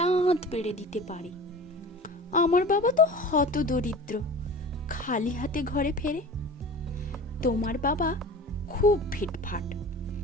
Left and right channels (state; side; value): normal; both; correlation 0.38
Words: পেড়ে দিতে পারে। আমার বাবা তো হত দরিদ্র, খালি হাতে ঘরে ফেরে। তোমার বাবা খুব ফিটফাট,